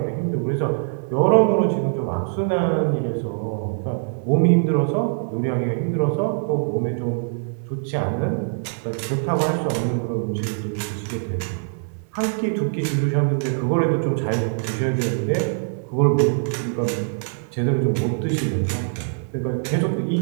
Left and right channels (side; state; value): left; silent; digital silence